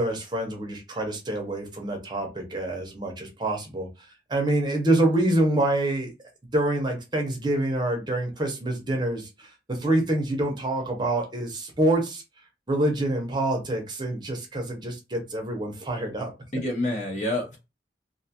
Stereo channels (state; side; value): normal; both; correlation 0.62